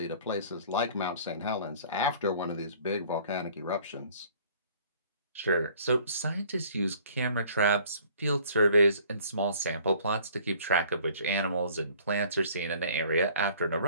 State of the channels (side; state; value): both; inverted; correlation -0.54